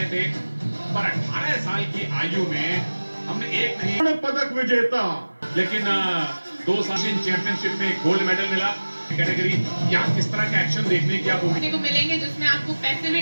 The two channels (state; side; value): inverted; both; correlation -1.00